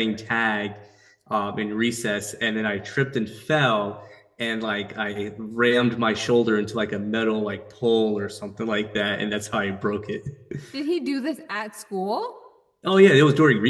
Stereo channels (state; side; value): identical; both; correlation 1.00